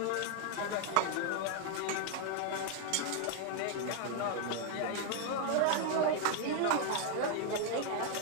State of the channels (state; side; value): different; both; correlation 0.00